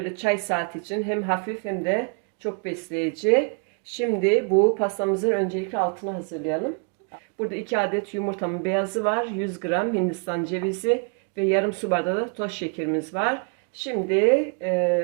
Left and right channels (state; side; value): quieter; left; 37.9 dB